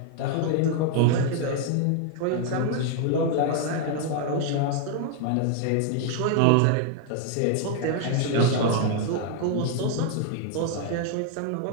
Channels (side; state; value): both; different; correlation 0.00